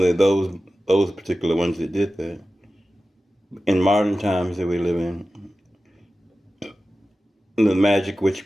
those particular ones that did that. In modern times that we live in, the magic,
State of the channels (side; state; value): both; normal; correlation 0.94